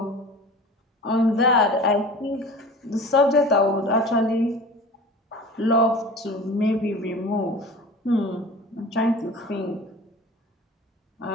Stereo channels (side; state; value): both; normal; correlation 0.39